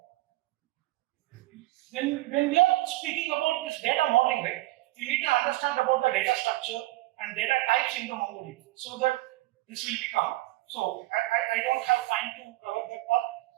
When we are speaking about this data modeling, right, you need to understand about the data structure and data types in the MongoDB so that this will become. So I don't have time to cover that part,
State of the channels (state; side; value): quieter; left; 18.7 dB